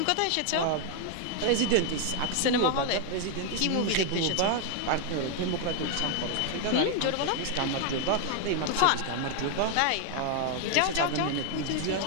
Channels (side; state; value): both; different; correlation 0.01